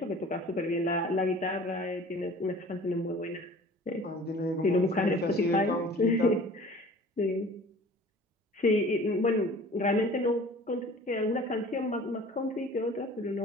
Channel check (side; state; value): both; normal; correlation 0.46